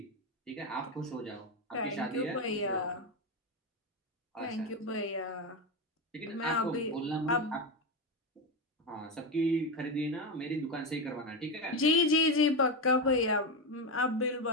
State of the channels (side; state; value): both; normal; correlation 0.13